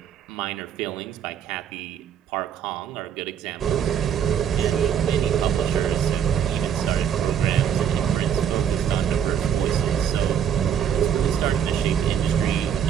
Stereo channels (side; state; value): left; quieter; 8.6 dB